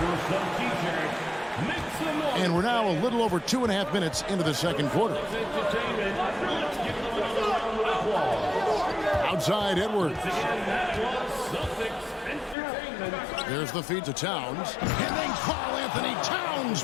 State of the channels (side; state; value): right; drops out; at 12.6 s